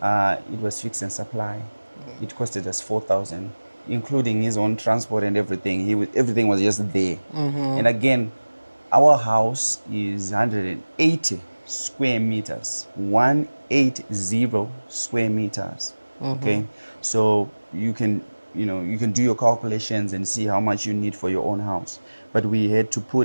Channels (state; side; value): inverted; both; correlation -1.00